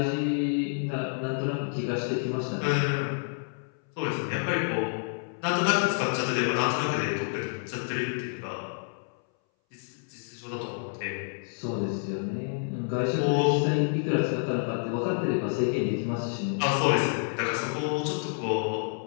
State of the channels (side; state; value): right; silent; 59 dB below the other